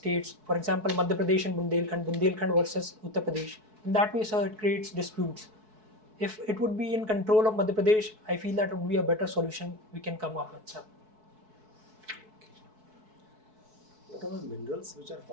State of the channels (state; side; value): late; left; 4.6 ms